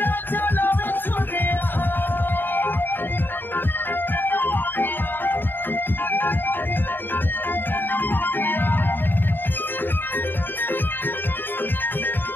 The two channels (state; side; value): late; right; 0.094 ms